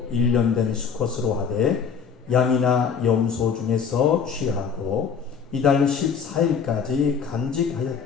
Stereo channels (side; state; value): right; quieter; 6.5 dB